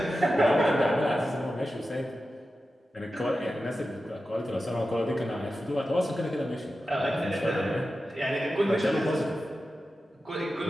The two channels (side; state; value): both; normal; correlation 0.92